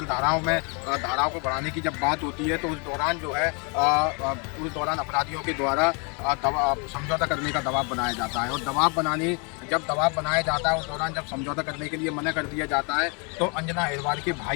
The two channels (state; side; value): quieter; right; 34.5 dB